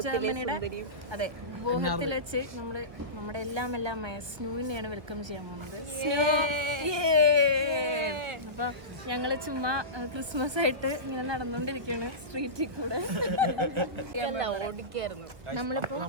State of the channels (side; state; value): left; late; 1.0 ms